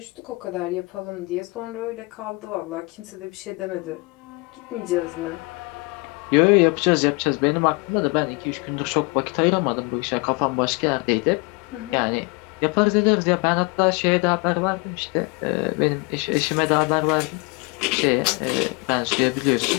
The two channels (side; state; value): right; quieter; 28.1 dB